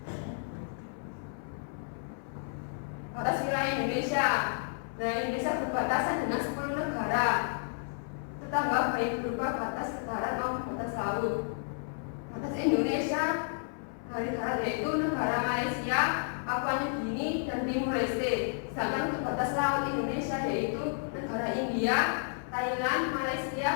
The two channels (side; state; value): right; silent; 57 dB below the other